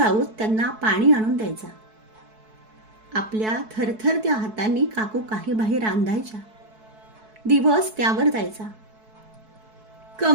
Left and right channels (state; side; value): late; left; 4.6 ms